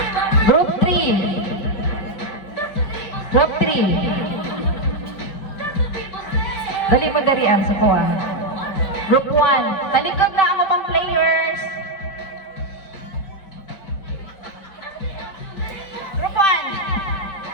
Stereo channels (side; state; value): right; late; 5.3 ms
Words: Group 3. Group 3. Dali mo darian sa kuha. Group 1. Talikod na ang upang players. Group